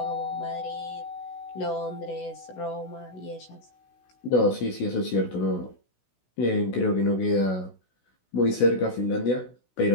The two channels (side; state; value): right; late; 16 ms